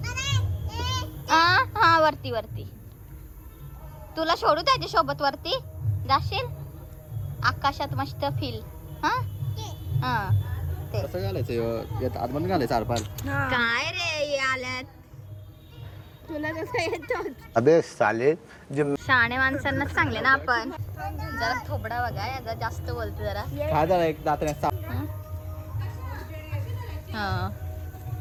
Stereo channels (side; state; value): both; identical; correlation 1.00